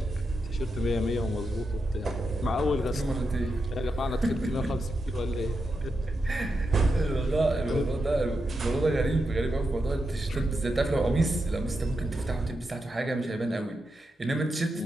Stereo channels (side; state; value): both; normal; correlation 0.86